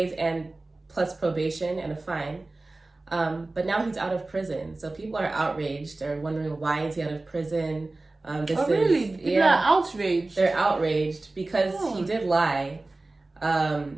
and plus probation and a fine. But now he's out of prison. So people are outraged. They're wondering, why is he out of prison? Really? People are outraged? They're outraged because he did lie.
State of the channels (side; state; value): left; quieter; 3.1 dB